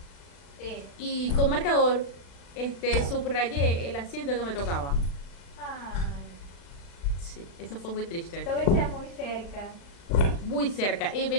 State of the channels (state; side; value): late; right; 36 ms